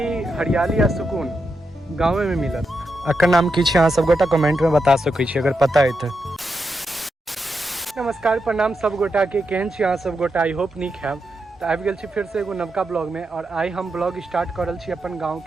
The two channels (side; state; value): both; normal; correlation 0.85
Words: हरियाली आ सुकून गाँव में मिलत। अकर नाम की छै अहाँ सब गोटा कमेंट में बता सकै छी अगर पता है तो। नमस्कार प्रणाम सब गोटा के, केहन छी अहाँ सब गोटा? आई होप नीक हैब। तो आबि गेल छी फिर से एगो नवका ब्लॉग में, और आई हम ब्लॉग स्टार्ट करल छी अपन गाँव